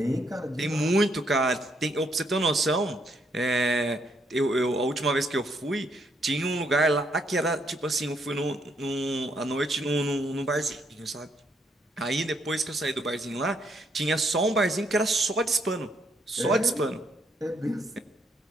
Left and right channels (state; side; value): normal; both; correlation 0.73